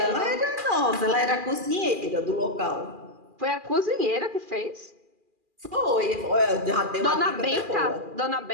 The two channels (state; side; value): late; left; 2.4 ms